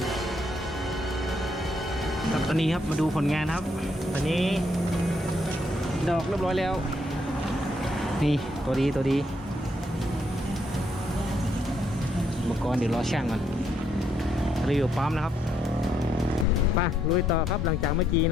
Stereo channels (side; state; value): both; normal; correlation 0.74